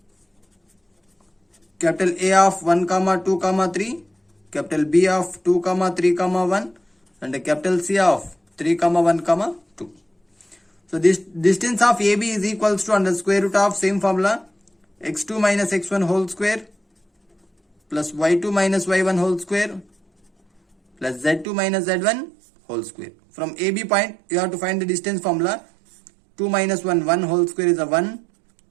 capital A of 1, 2, 3, capital B of 2, 3, 1 and capital C of 3, 1, 2. So this distance of AB is equals to under square root of same formula x2 minus x1 whole square plus y2 minus y1 whole square plus z2 minus z1 whole square. From AB point you have to find the distance formula. 2 minus 1, 1 whole square is a 1,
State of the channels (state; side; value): drops out; left; at 21.5 s